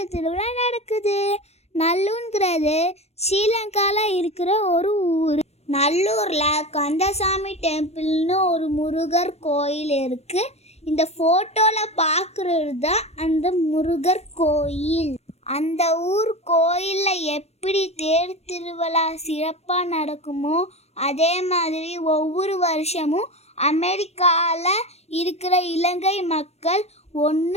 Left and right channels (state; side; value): late; right; 0.31 ms